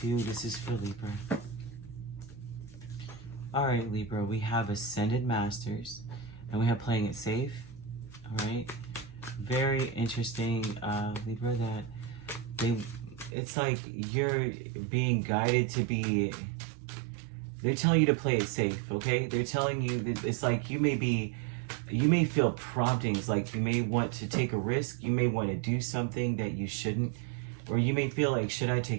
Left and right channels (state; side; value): drops out; left; at 13.4 s